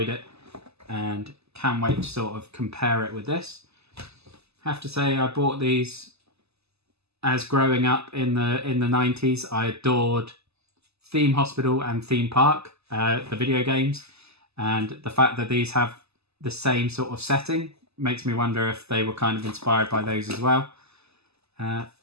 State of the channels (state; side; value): late; left; 0.79 ms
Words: it and can't wait to sort of compare it with this. Have to say I bought these as growing up in the 90s. I adored Theme Hospital and Theme Park, the video games, and the fact that these have the same sort of setting makes me wonder if they were kind of inspired by those as well. But